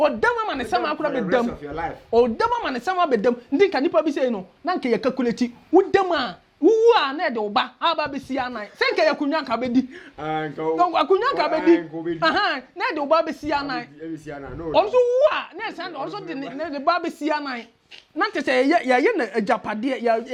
ama ne sama akura bedam odam ama ne sama bedam ndi ka nipa bi sei no na nka ye calculate wodam a wuwu a na de oba aba be sia nan se nka ye kunwa ka bedi akunwa ka bedi aha na de oba be sia nan onso wu a na se na onso de ba be sia nan na tete ye na ajapade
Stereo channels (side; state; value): both; identical; correlation 1.00